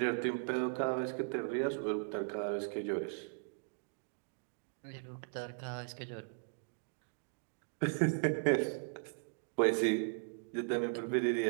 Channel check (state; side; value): silent; left; digital silence